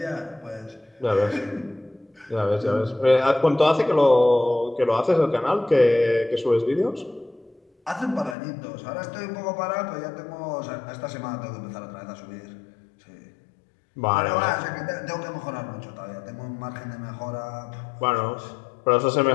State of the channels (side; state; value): right; drops out; at 8.3 s